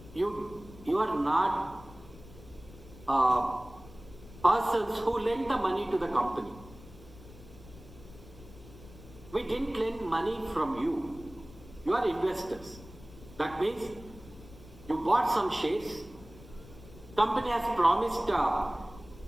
You are not persons who lend the money to the company. We didn't lend money from you. You are investors. That means you bought some shares. Company has promised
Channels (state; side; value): noise; left; rumble, 19 dB below the sound